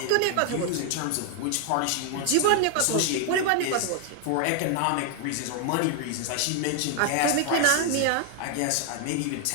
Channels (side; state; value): both; different; correlation 0.00